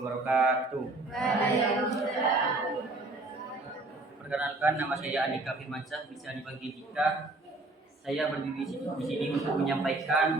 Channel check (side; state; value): left; quieter; 3.0 dB